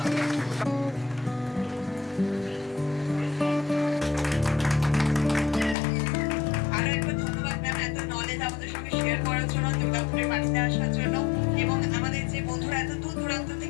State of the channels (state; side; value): drops out; right; at 5.8 s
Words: আরো একবার ধন্যবাদ ম্যাম এত নলেজ আমাদের সঙ্গে শেয়ার করার জন্য, দুর্গাপুরের বাড়িতে আসার জন্য এবং আমাদের যে বন্ধুরা এত দূর দূরান্ত